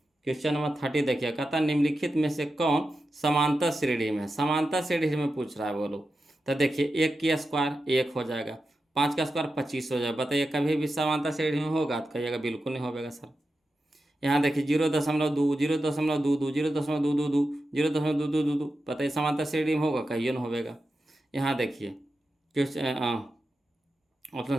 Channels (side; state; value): both; normal; correlation 0.90